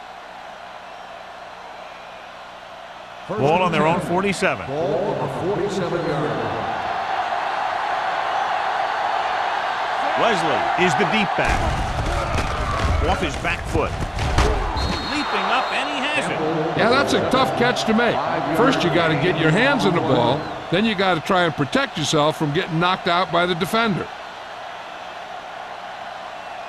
Ball on their own 47. Ball on the 47-yard line. Wesley is the deep back. Off his back foot. Leaping up, and he has it. Yeah, that's a tough catch to make. First, you got to get your hands on the ball. Then you got to try and protect yourself from getting knocked out by the defender.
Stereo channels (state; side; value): identical; both; correlation 1.00